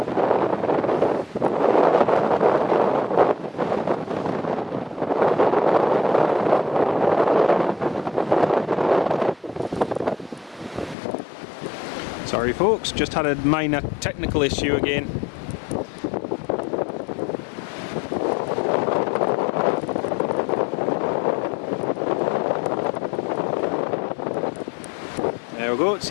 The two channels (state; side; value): drops out; right; at 11.0 s